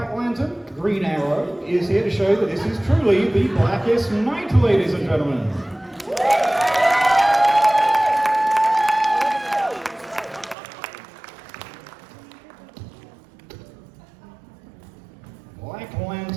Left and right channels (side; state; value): left; drops out; at 10.6 s